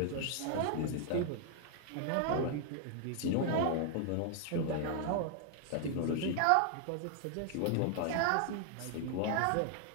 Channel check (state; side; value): different; both; correlation 0.00